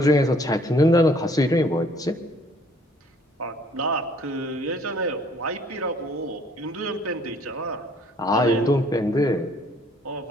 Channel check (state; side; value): normal; both; correlation 0.60